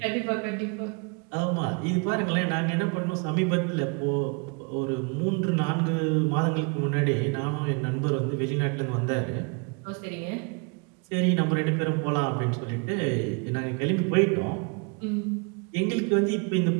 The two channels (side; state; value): left; quieter; 33.8 dB